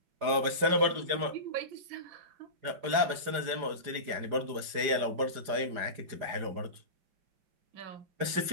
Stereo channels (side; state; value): left; late; 4.9 ms